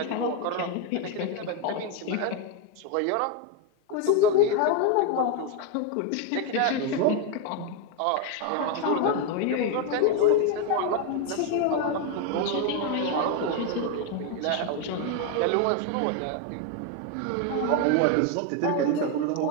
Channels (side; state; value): both; different; correlation 0.01